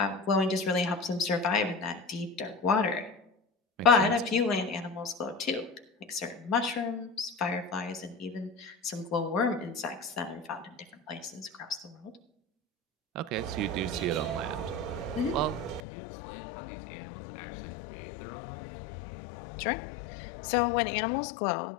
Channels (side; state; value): right; drops out; at 15.8 s